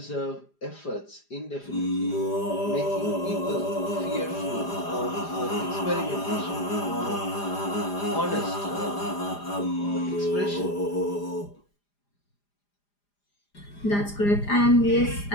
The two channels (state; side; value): late; right; 4.9 ms